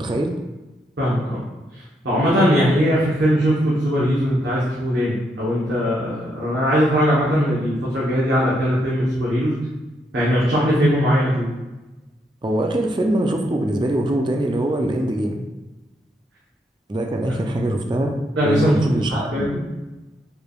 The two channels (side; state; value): both; normal; correlation 0.77